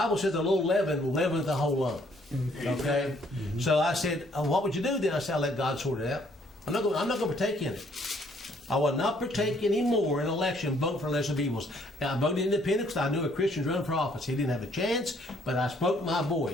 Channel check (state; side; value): normal; both; correlation 0.65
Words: says a little leaven leaveneth the whole lump. Okay? So I said, what would you do then? I said, I'll let God sort it out. I'm not going to partake in it. I will not partake anymore in an election vote for lesser of evils. I voted independent because I knew a Christian running for office. He didn't have a chance, but I spoke my